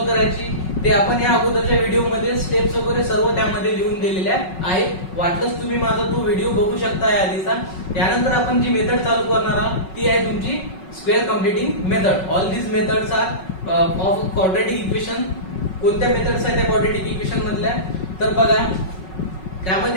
करायची ते आपण या अगोदरच्या व्हिडिओमध्ये स्टेप्स वगैरे सर्व त्यामध्ये लिहून दिलेल्या आहेत. वाटलंच तुम्ही माझा तो व्हिडिओ बघू शकता या आधीचा. त्यानंतर आपण जी मेथड चालू करणार आहोत ती आहे तुमची square completing method. All these methods are of quadratic equation. कोणत्या मेथड्स आहेत त्या क्वाड्रॅटिक इक्वेशन मधल्या, तर बघा,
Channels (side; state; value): right; late; 5.4 ms